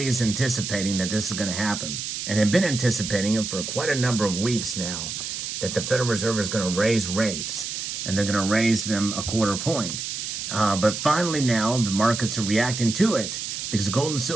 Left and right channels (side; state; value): right; noise; hiss, 5 dB below the sound